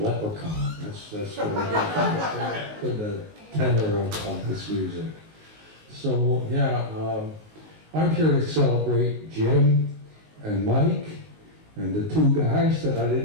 That's what I got from the tenor of his music. So yeah, I'm here to celebrate Jim and Mike and the two guys that I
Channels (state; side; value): late; left; 19 ms